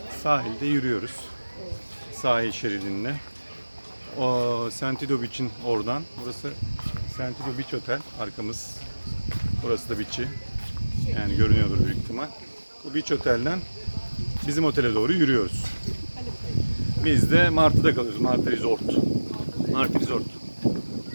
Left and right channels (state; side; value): inverted; both; correlation -1.00